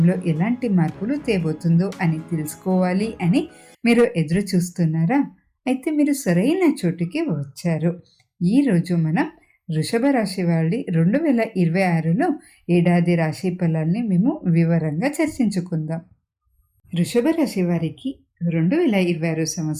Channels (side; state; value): both; identical; correlation 1.00